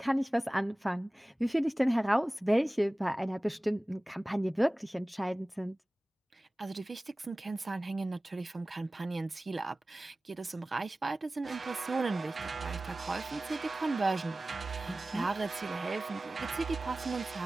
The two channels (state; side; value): normal; both; correlation 0.97